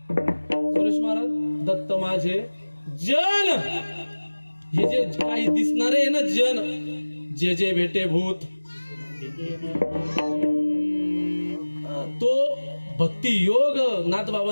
सुरेश महाराज, दत्त माझे जन. हे जे काही दिसणारे आहे ना जन, जे जे भेटे भूत, तो भक्ती योग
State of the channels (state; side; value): inverted; both; correlation -1.00